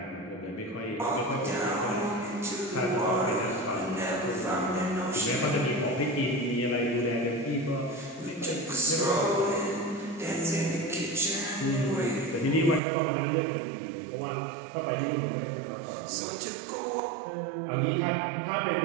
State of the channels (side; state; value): left; drops out; at 12.8 s